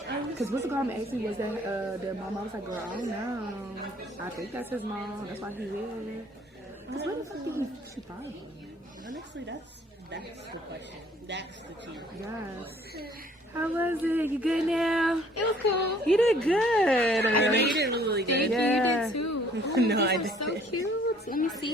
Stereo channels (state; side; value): normal; both; correlation 0.58